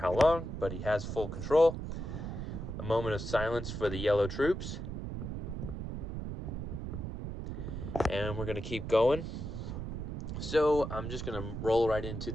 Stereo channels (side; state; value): right; noise; rumble, 5 dB below the sound